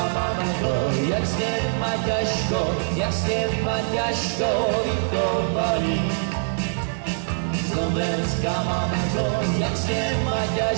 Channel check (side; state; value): left; silent; 63 dB below the other